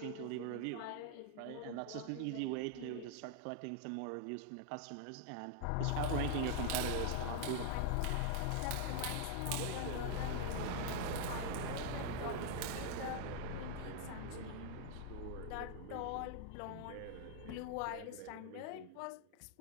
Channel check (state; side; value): different; both; correlation 0.00